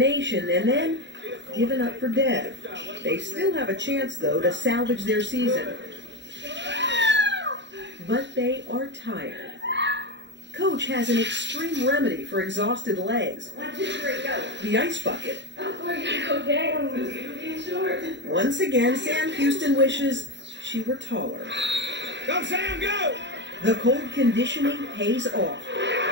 and then given up for dead. They still have a chance, though, to salvage their season. But they are tired. Coach has an extreme remedy for exhausted legs. 1, 2, 3, go. The ice bucket. Oh, we're gonna go down. It's getting short. Once again, Sam Houston wishes she were taller. Go, Sam, go! The cold conditioning pays off.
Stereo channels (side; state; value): left; late; 0.52 ms